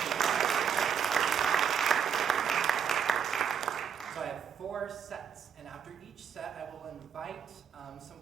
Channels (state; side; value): quieter; left; 7.5 dB